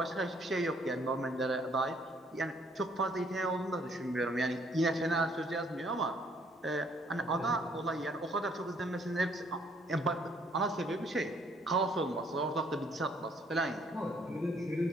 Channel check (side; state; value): both; normal; correlation 0.65